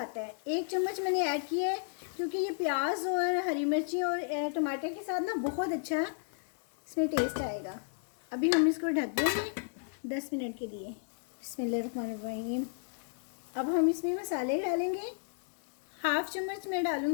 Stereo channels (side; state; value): right; silent; digital silence